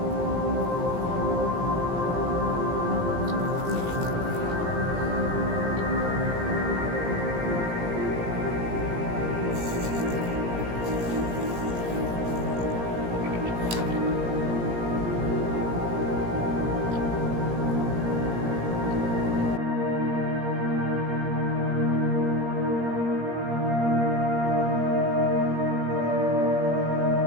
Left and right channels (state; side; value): late; left; 17 ms